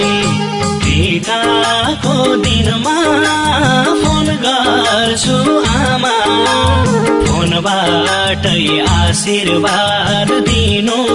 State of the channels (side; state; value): both; identical; correlation 1.00